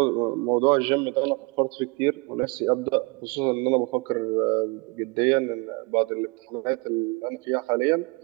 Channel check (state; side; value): quieter; left; 28.2 dB